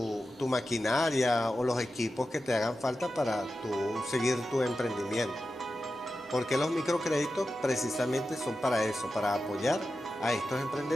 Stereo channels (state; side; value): normal; both; correlation 0.92